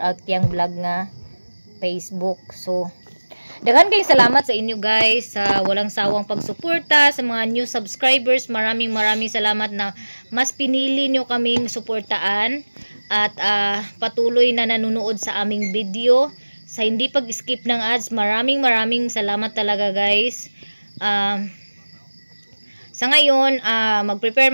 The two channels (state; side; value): inverted; both; correlation -1.00